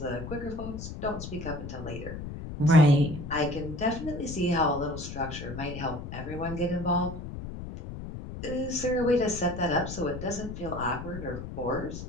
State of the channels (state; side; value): noise; left; rumble, 9 dB below the sound